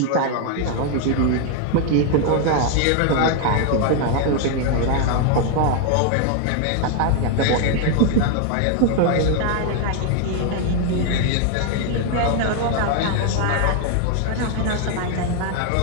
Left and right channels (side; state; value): both; different; correlation 0.00